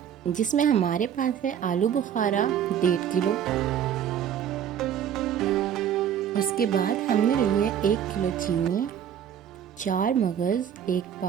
जिसमें हमारे पास है आलू बुखारा 1.5 किलो। उसके बाद हमने लिए 1 किलो चीनी, 4 मगज़ 1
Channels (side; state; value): left; quieter; 9.2 dB